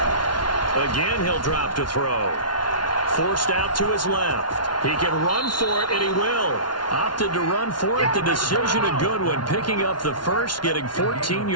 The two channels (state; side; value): late; right; 0.70 ms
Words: Again, he'll drop to throw. Forced out to his left. He can run for it, and he will. Opted to run for it. The decision a good one. Picking up the first, getting 14